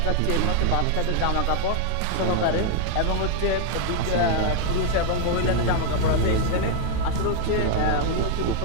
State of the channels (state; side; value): different; both; correlation 0.00